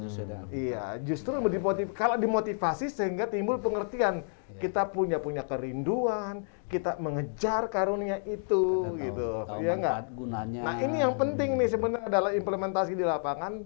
sesuai dengan Iya, justru kalau dimotivasi sehingga timbul pengertian. Kita punya kerinduan, kita mengejar karunia itu, gitu. tahu Iya nggak? manfaat gunanya. Nah ini yang penting nih sebenarnya dalam implementasi di lapangan,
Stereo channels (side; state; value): right; silent; digital silence